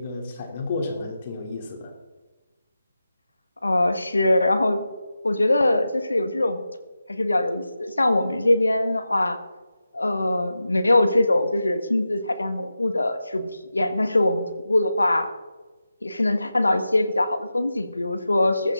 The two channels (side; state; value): both; inverted; correlation -0.92